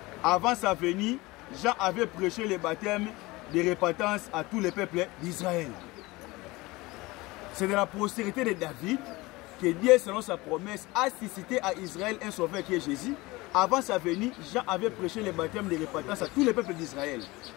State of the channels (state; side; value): quieter; right; 21.7 dB